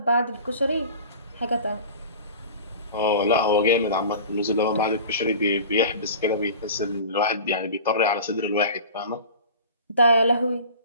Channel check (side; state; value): both; inverted; correlation -0.39